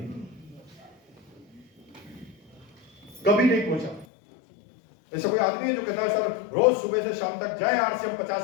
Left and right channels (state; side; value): drops out; right; at 4.0 s